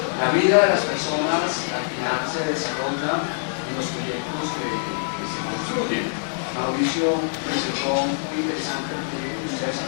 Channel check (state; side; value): silent; right; 63 dB below the other